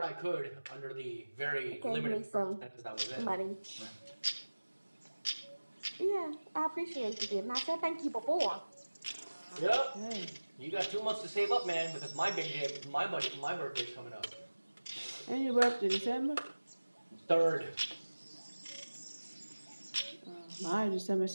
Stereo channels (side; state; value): both; inverted; correlation -1.00